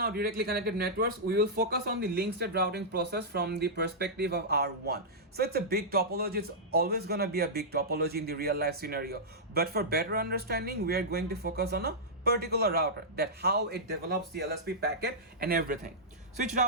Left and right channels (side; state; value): both; normal; correlation -0.12